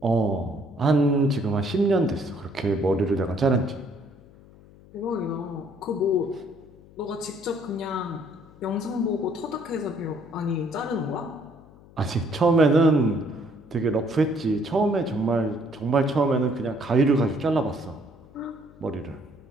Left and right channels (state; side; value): noise; left; hum, 23 dB below the sound